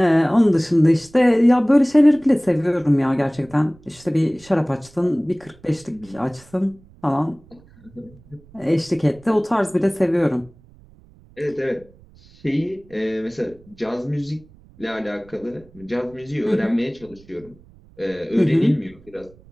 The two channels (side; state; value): right; noise; rumble, 26 dB below the sound